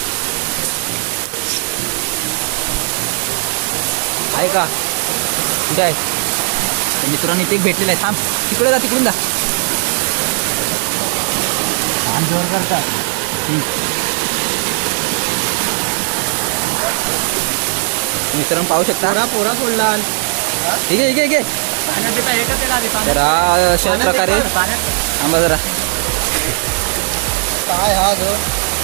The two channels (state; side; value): silent; left; 55 dB below the other